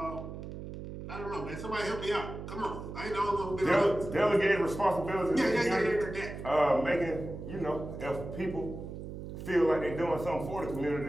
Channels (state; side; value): noise; right; hum, 9 dB below the sound